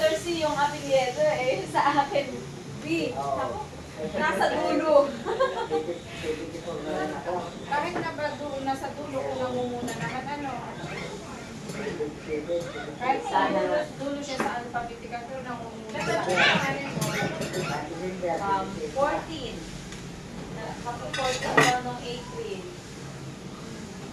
B. Oo. Nasa dulo. Kahit na ba doon, nasa dulo ko namumuna naman ano. Kahit sa dulo siya sa alphabetical, pero namumuna. 14. Kapag 14 daw nung April.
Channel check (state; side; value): identical; both; correlation 1.00